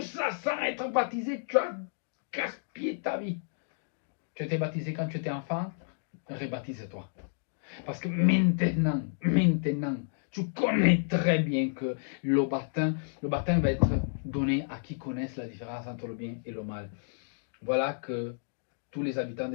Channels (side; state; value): right; silent; digital silence